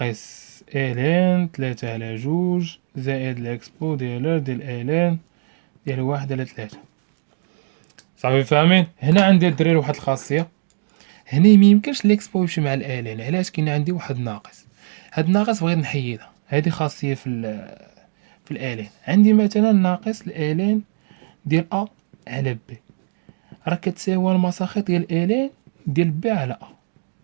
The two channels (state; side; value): silent; left; digital silence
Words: الين تلاتة على جوج زائد ليكسبو ديال الين ديال واحد على تلاتة. صافي فاهمين؟ هنا عندي الدراري واحد الخاصيه، هنا ميمكنش ليكسبو يمشي مع الالين. علاش؟ كاين عندي واحد ناقص، هاد الناقص بغيت نحيدها، هادي خاصيه في الالين. عندي مثلا ناقص الالين ديال ا على بي راه كتساوي المساخط ديال الين ديال بي على ا.